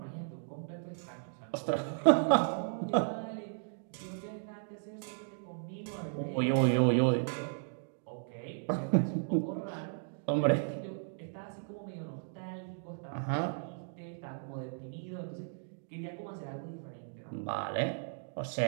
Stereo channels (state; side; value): silent; left; digital silence